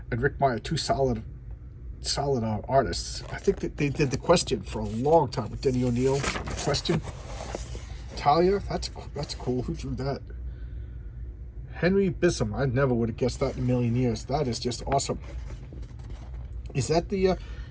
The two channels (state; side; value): identical; both; correlation 1.00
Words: and Rick Meyer, two solid artists. I think that they did the Question for a long time with Denny O'Neil. Question. Talia, that's cool. Who drew that? Henry Bissum. I never would have guessed that in a million years. That is just awesome. Is that the?